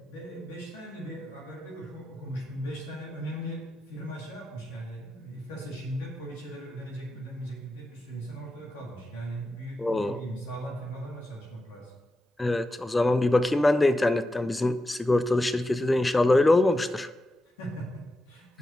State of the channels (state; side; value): normal; both; correlation 0.89